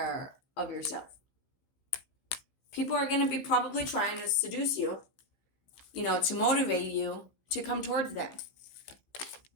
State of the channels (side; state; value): right; late; 15 ms